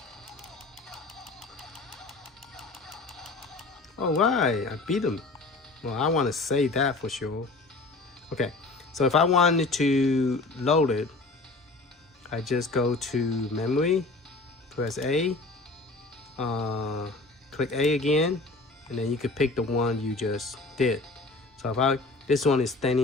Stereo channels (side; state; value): right; quieter; 3.4 dB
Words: All right, I beat him. Well, I want to save that for sure. Okay, so if I wanted to load it, I just go to memory, press A, click A again, and then you can pick the one you just did. So if this one is